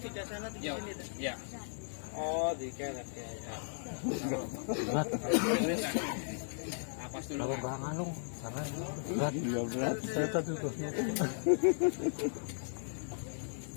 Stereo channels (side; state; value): right; silent; digital silence